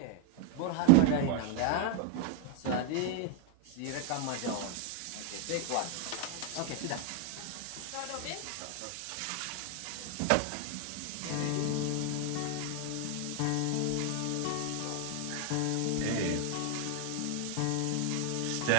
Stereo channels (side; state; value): both; different; correlation 0.01